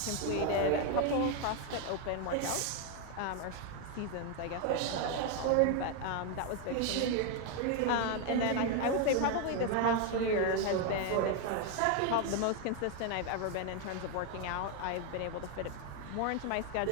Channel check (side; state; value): both; different; correlation 0.01